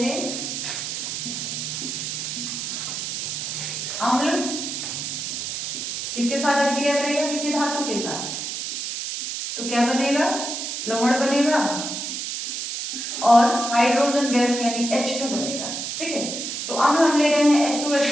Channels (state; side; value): noise; right; hiss, 4 dB below the sound